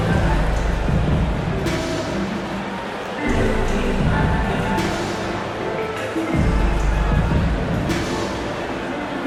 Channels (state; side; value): identical; both; correlation 1.00